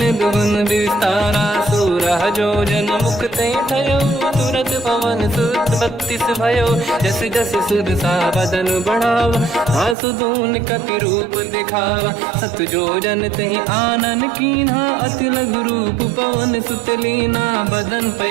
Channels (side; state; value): left; drops out; at 10.0 s